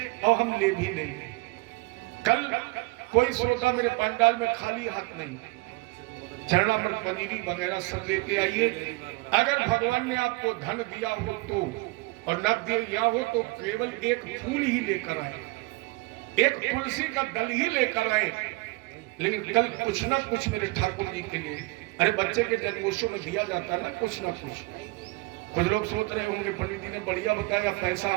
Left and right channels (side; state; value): left; quieter; 24.1 dB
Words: और हम ले भी लेंगे। कल कोई श्रोता मेरे पंडाल में खाली हाथ नहीं, चरणामृत, पनीरी वगैरह सब लेके आइए। अगर भगवान ने आपको धन दिया हो तो, और न दिया हो तो केवल एक फूल ही लेकर आए, एक तुलसी का दल ही लेकर आए। लेकिन कल कुछ ना कुछ मेरे ठाकुर जी के लिए, अरे बच्चे के जन्मोत्सव में दिया जाता ना कुछ ना कुछ। कुछ लोग सोच रहे होंगे पंडित जी ने बढ़िया बताया, पैसा